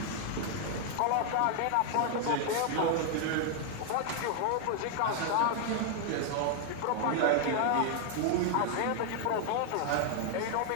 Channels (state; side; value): different; both; correlation 0.00